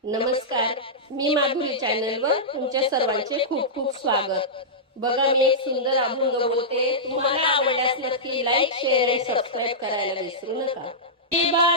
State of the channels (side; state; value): both; normal; correlation -0.13